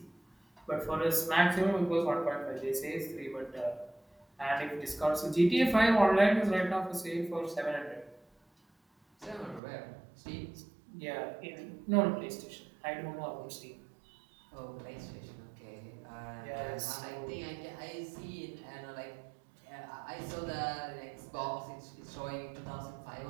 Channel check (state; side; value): drops out; left; at 9.6 s